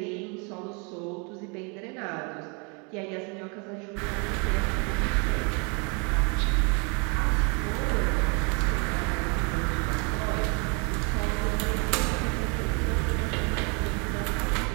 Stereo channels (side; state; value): left; quieter; 33.3 dB